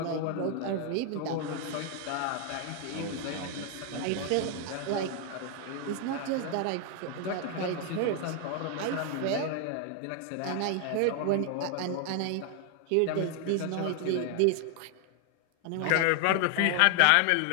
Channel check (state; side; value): different; both; correlation 0.00